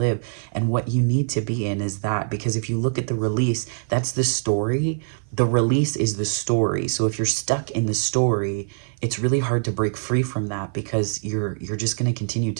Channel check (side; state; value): left; silent; 57 dB below the other